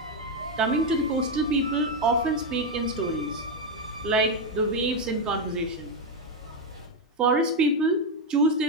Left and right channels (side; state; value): both; normal; correlation 0.05